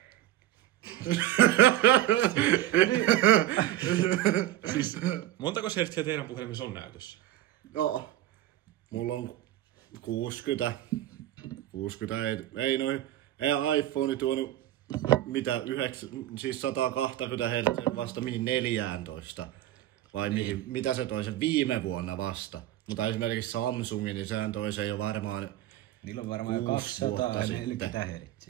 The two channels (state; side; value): quieter; left; 13.7 dB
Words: Siis, montako hertsiä teidän puhelimessa on näytössä? No, mulla on 60 ei iPhone tuonut mitä 120 Hz vasta mihin 14. Vai mihin, mitä se toi sen viime vuonna vasta. Mutta esimerkiksi Samsungin, niin sehän toi sen jo varmaan. Niillä on varmaan 240